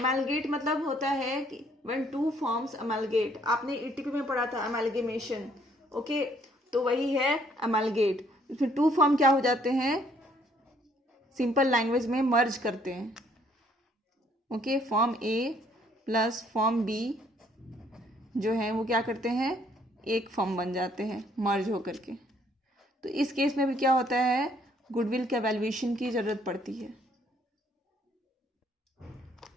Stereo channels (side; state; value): both; normal; correlation 0.64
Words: मतलब होता है कि when two forms amalgate, आपने ईटीपी में पढ़ा था amalgamation, ओके, तो वही है amalgate। इसमें टू फॉर्म क्या हो जाते हैं, सिंपल लैंग्वेज में मर्ज करते हैं। ओके, फॉर्म ए प्लस फॉर्म बी जो है वो क्या करते हैं, एक फॉर्म बन जाते हैं मर्ज होकर के। तो इस केस में भी क्या होता है, गुडविल के वैल्यूएशन की जरूरत पड़ती है।